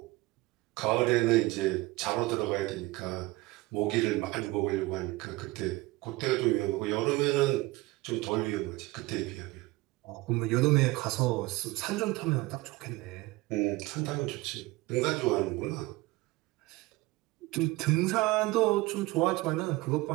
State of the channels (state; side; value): quieter; left; 20.7 dB